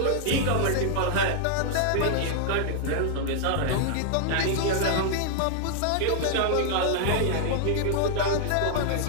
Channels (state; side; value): different; both; correlation -0.01